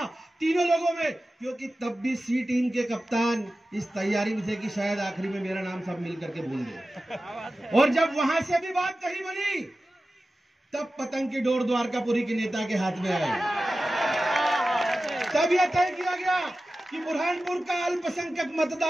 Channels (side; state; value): both; normal; correlation 0.94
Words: तीनों लोगों में, क्योंकि तब भी सी टीम के कप्तान इस तैयारी में थे कि शायद आखिरी में मेरा नाम सब मिल करके भूल गए। और जब वहां से भी बात कही बनी, तब पतंग की डोर द्वारकापुरी के नेता के हाथ में आई। तब यह तय किया गया कि बुरहानपुर का अल्पसंख्यक